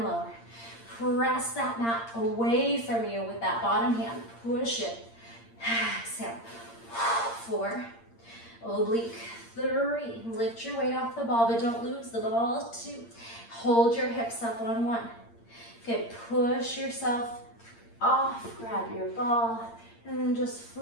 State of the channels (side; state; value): right; late; 8.7 ms